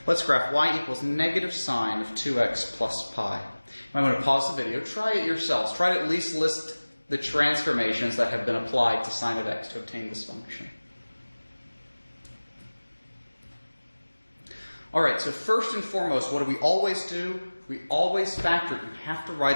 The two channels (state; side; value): inverted; both; correlation -1.00